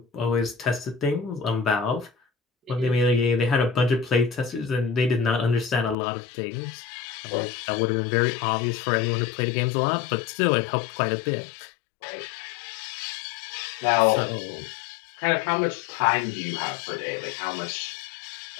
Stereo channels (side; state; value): right; drops out; at 6.0 s